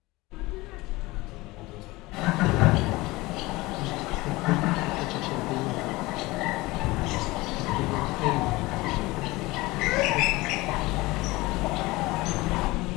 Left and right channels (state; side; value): quieter; right; 21.0 dB